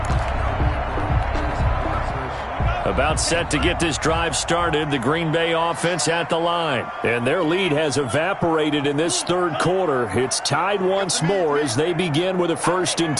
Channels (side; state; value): both; identical; correlation 1.00